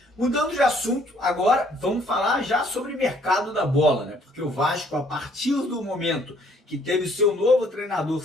Mudando de assunto, agora vamos falar já sobre o mercado da bola, né? Porque o Vasco, a partir do momento que teve o seu novo treinador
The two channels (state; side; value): normal; both; correlation 0.63